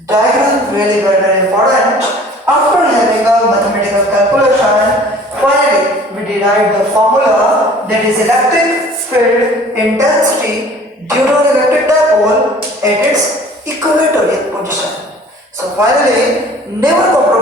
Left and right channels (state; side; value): normal; both; correlation 0.49